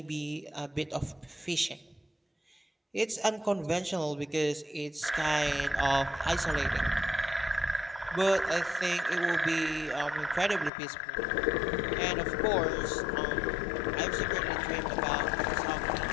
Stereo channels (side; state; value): right; drops out; at 10.7 s